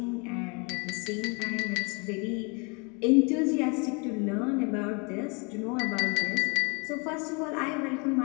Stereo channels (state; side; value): quieter; right; 32.1 dB